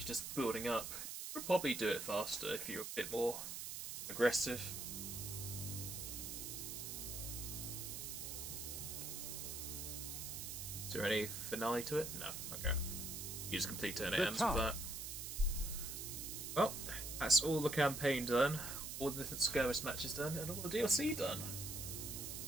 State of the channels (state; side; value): noise; right; hiss, 6 dB below the sound